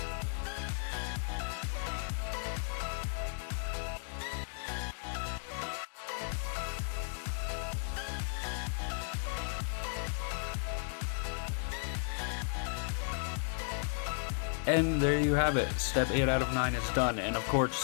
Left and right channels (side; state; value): right; silent; digital silence